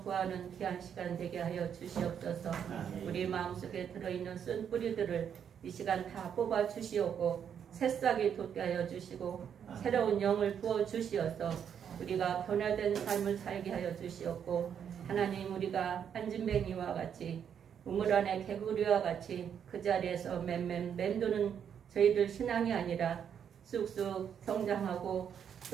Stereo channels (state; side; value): quieter; left; 8.2 dB